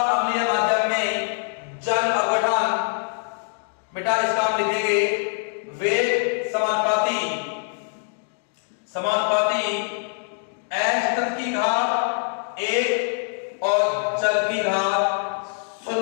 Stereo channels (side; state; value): right; silent; 63 dB below the other